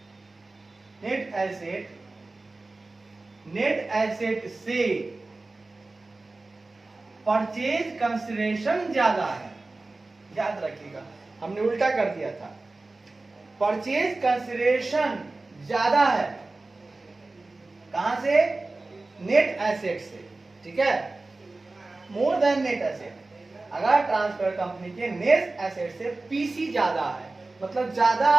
asset से परचेज कंसिडरेशन ज्यादा है, याद रखिएगा हमने उल्टा कर दिया था, परचेज कंसिडरेशन ज्यादा है, कहां से, नेट एसेट से, ठीक है, मोर देन नेट एसेट, अगर ट्रांसफर कंपनी के नेट एसेट से पीसी ज्यादा है, मतलब ज्यादा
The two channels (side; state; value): left; quieter; 3.2 dB